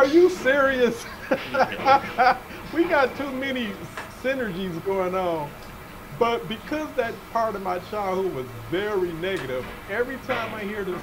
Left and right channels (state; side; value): identical; both; correlation 1.00